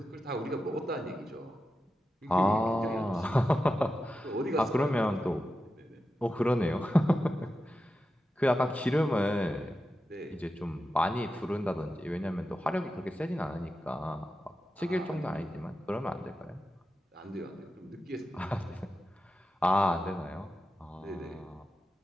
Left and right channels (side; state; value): both; normal; correlation 0.90